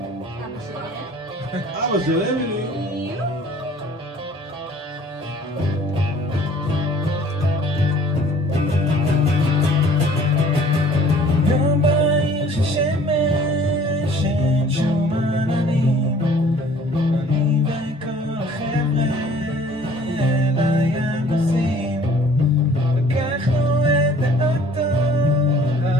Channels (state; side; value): normal; both; correlation 0.53